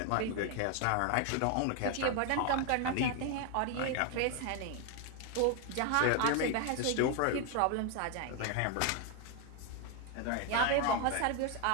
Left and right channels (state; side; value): different; both; correlation 0.01